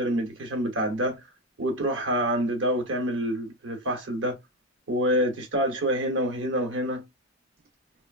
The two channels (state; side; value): normal; both; correlation 0.13